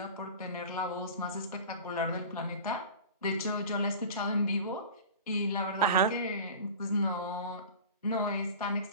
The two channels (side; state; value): both; inverted; correlation -0.36